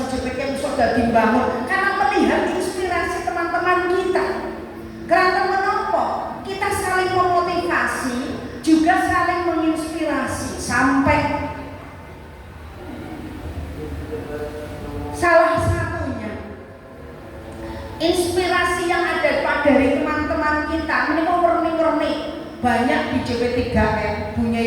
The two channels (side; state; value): both; identical; correlation 1.00